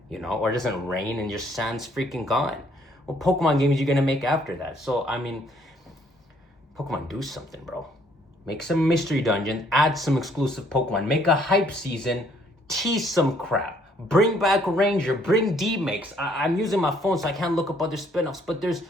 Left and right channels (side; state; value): both; normal; correlation 0.64